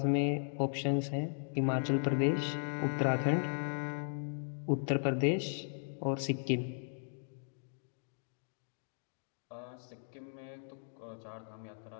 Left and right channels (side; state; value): right; silent; digital silence